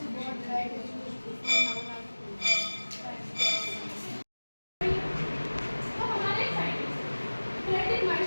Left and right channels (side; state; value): both; inverted; correlation -1.00